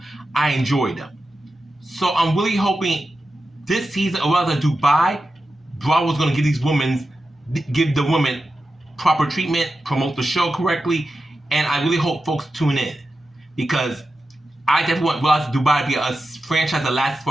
I enjoy them. So I'm really hoping this season, or rather Dubai, Bravo's going to give the women proper treatment, promote the show correctly, and I really hope folks tune in. Because I definitely want Real Housewives of Dubai to be a franchise that lasts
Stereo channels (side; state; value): both; normal; correlation 0.91